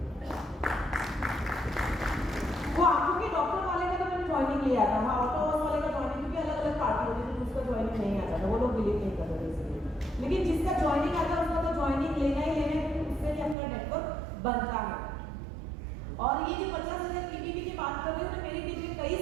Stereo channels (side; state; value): left; drops out; at 13.6 s